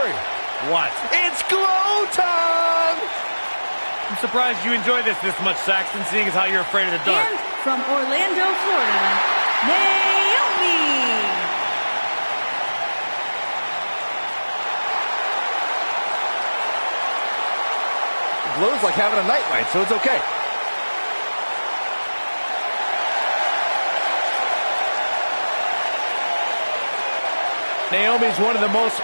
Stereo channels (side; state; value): both; inverted; correlation -1.00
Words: What? It's glow time! I'm surprised you enjoy this much, Saxton, seeing as how you're afraid of the dark. And from Orlando, Florida, Naomi! Glow's like having a nightlight, so it's okay. Naomi's one of the most